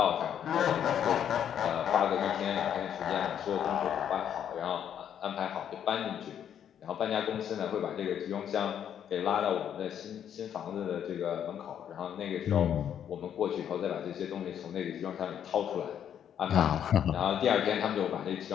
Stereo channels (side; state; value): right; quieter; 9.3 dB